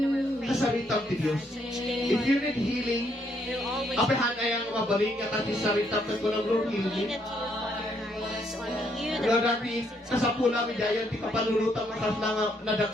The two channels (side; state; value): both; normal; correlation 0.72